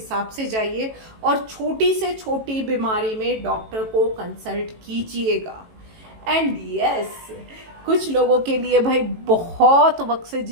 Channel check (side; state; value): left; late; 18 ms